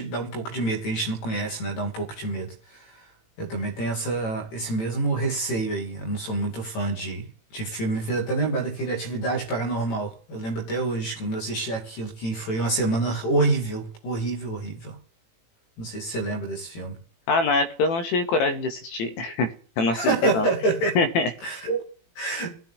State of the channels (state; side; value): late; right; 18 ms